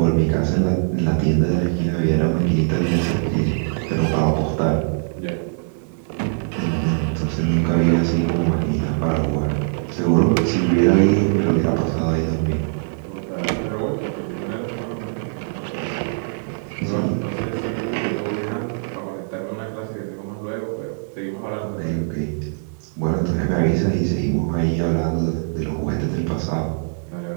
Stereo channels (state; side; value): silent; left; digital silence